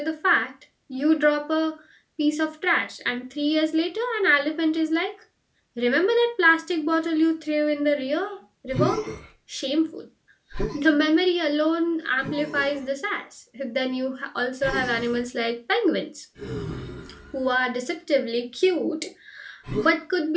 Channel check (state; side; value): identical; both; correlation 1.00